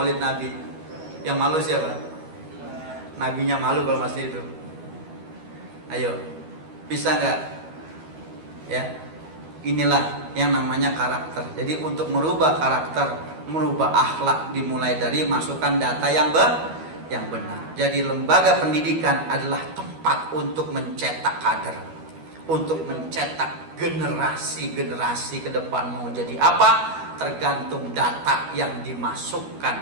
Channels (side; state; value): left; late; 12 ms